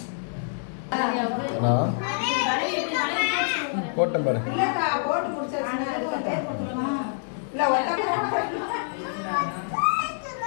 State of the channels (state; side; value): silent; right; digital silence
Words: போட்டேன் பாரு. இல்லக்கா போட்டு முடிச்சாச்சுன்னா இல்ல